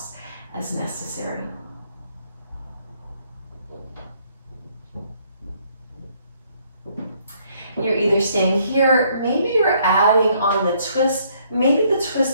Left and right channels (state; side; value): inverted; both; correlation -0.67